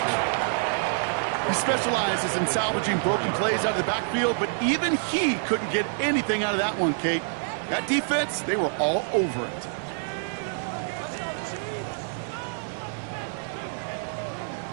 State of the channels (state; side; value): silent; left; 60 dB below the other